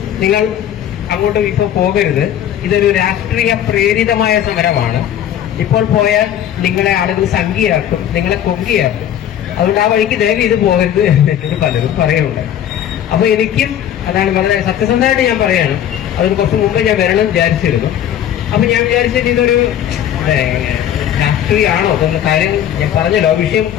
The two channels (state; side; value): quieter; right; 10.5 dB